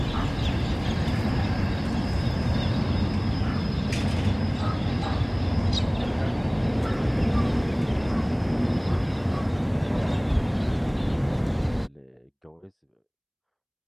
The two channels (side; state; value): both; identical; correlation 1.00